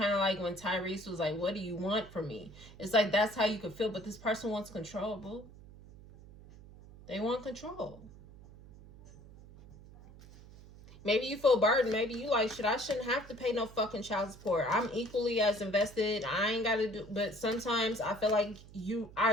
of like when Tyrese was like, what do you want from me? It's like, that's how you could feel, but this person wants control, boo. They want control. Maybe you feel burdened. Maybe you like, shit, I shouldn't have to pay no fucking child support. I'm equally as invested. I ain't got to do, but sometimes I feel like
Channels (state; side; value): noise; right; hum, 19 dB below the sound